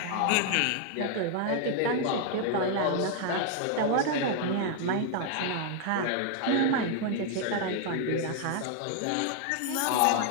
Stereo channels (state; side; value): different; both; correlation 0.00